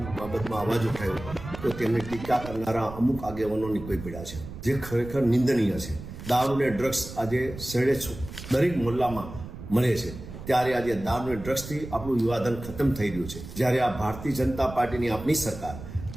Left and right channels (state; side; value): noise; right; rumble, 12 dB below the sound